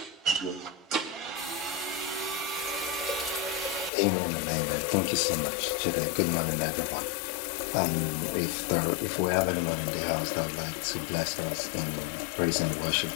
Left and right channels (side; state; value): right; drops out; at 3.9 s